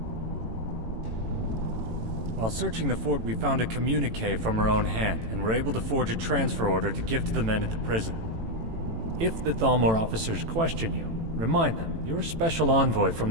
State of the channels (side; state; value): left; late; 18 ms